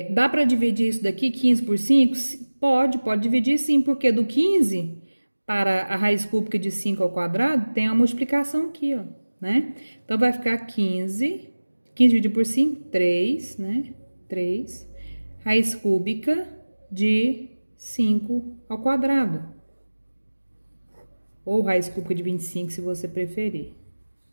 dá para dividir isso daqui, 15 por 5? Pode dividir sim, porque do 15 para a raiz cúbica de 5 ao quadrado, tem uma multiplicação aqui, ó, né? Então, vai ficar 15 dividido por 5, 3, né? 3, raiz cúbica de 5 ao quadrado. Ou raiz cúbica de 25, se você preferir,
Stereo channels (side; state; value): both; inverted; correlation -1.00